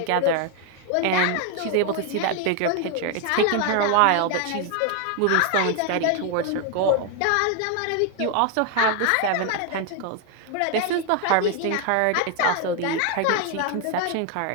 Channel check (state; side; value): different; both; correlation 0.00